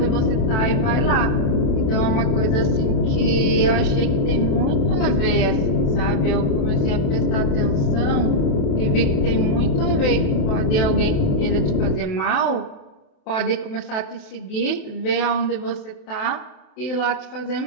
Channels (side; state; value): right; late; 27 ms